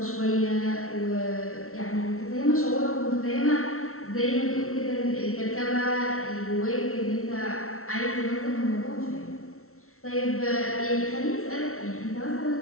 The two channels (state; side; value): late; right; 0.63 ms